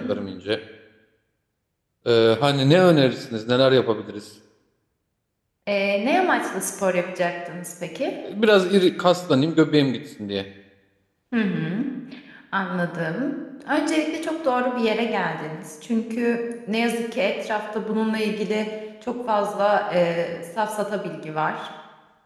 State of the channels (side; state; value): both; identical; correlation 1.00